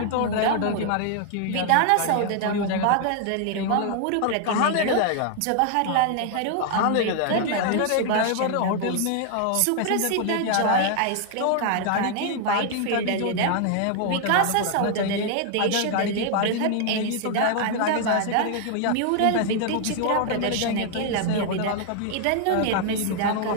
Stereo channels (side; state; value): both; different; correlation 0.00